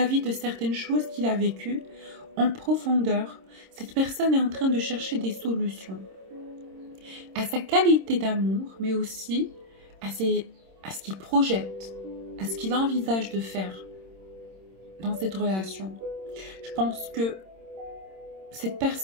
de certaines choses qu'il a vécues, en profondeur, cette personne est en train de chercher des solutions à sa qualité d'amour, mais aussi à ce qu'il projette, à ce qu'il envisage de faire dans cette relation. Je pense que cette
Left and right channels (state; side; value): late; left; 26 ms